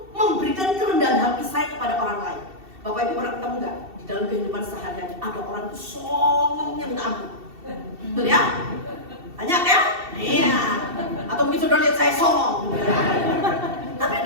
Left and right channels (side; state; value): left; late; 2.7 ms